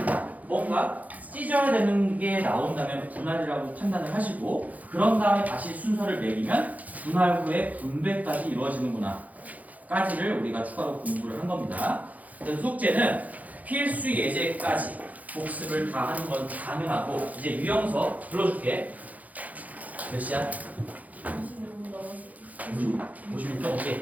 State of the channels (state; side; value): late; left; 0.077 ms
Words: 뭔가 찢어야 되는 게 나온다면 분할이라고 판단을 하시고, 그런 다음에 다시 순서를 매기면 분할 후에 분배까지 이루어지는구나 까지를 우리가 추가로 공부를 한 겁니다. 그래서 숙제는 필수 예제까지 복습을 다 하는 건 당연하고, 이제 유형서 불러줄게. 몇 시야? 26분 넘었어요. 56점